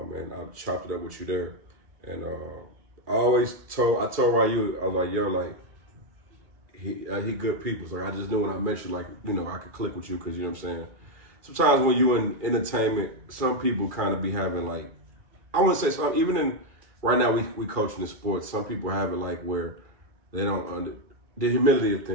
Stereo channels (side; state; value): left; late; 2.2 ms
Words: I chopped it up with you there. And I told Ryu, I was like, yo, like, he good people. So I just knew when I mentioned, like, you know, I could click with you because, you know what I'm saying? Sometimes when you in entertainment, some people kind of be having, like, I wouldn't say some, even in, right now we coaching the sports, some people have it like where they don't, the humility of